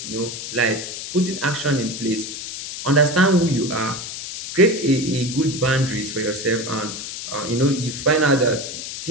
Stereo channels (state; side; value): noise; left; hiss, 8 dB below the sound